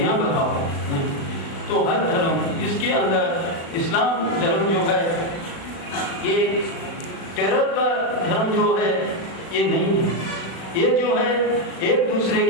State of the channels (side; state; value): right; late; 36 ms